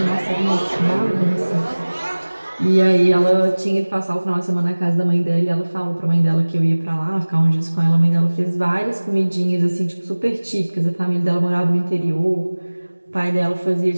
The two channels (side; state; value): both; inverted; correlation -1.00